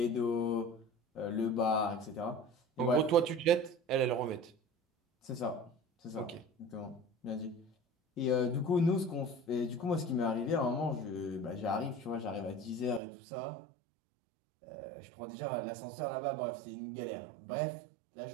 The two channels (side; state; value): left; drops out; at 13.0 s